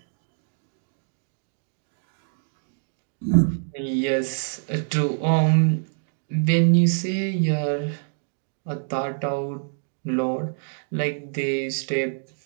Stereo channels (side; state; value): left; silent; digital silence